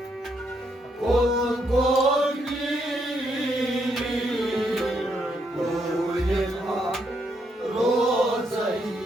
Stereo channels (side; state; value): both; normal; correlation 0.76